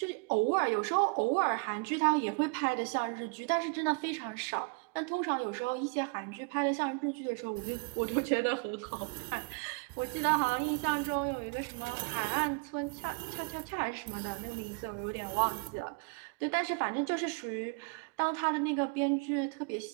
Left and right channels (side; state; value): left; quieter; 33.7 dB